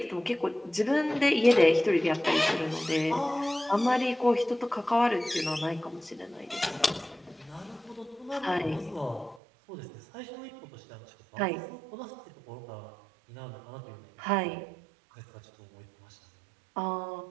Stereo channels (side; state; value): left; drops out; at 9.4 s